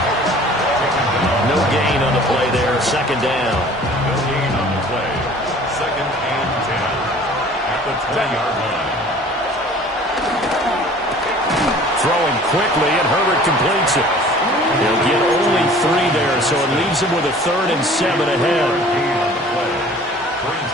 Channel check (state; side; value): normal; both; correlation 0.48